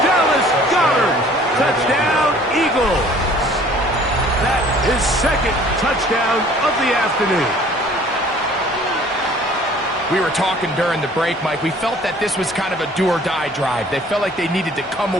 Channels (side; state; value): both; normal; correlation 0.53